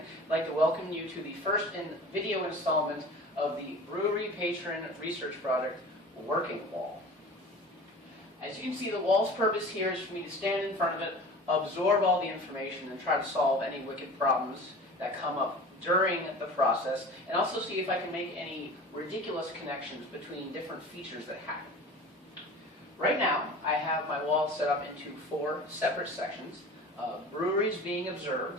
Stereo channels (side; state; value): both; normal; correlation 0.39